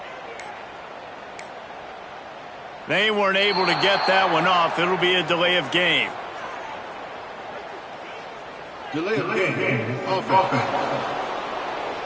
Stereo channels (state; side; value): identical; both; correlation 1.00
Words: They weren't able to get that one off. It'll be a delay of game. Delay of game. Offense.